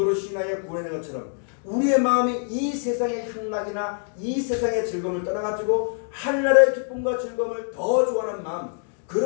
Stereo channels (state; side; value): silent; right; 56 dB below the other